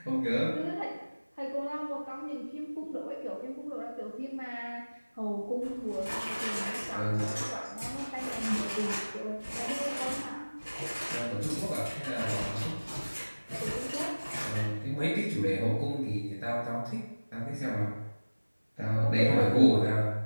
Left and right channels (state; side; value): inverted; both; correlation -1.00